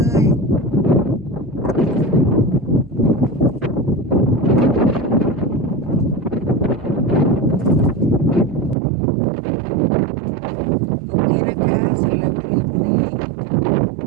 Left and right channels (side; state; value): left; drops out; at 8.8 s